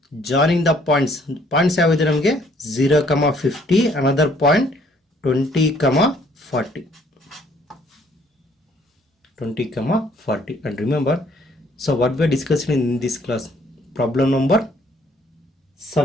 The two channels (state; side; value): normal; both; correlation 0.63